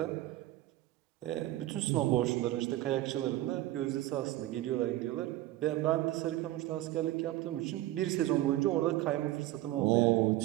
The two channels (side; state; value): left; quieter; 15.9 dB